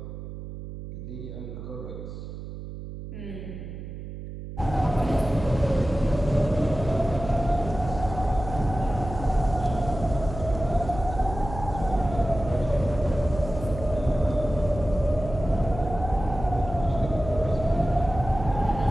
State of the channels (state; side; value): noise; right; hum, 10 dB below the sound